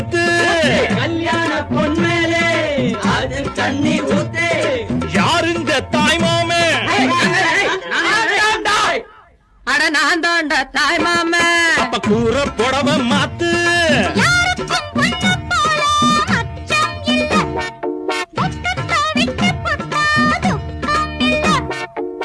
கல்யாண பொன்மேலே அது தண்ணி ஊத்து யாருங்க தாய்மாமே அட நான் தாண்டா தாய் மாமே. அப்ப கூற புடவ மாத்து யாருக்கும் பொண்ணு போல அச்சம் இல்ல. துக்கத்தை விட்டு புட்டா துக்கம் இல்ல.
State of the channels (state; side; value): identical; both; correlation 1.00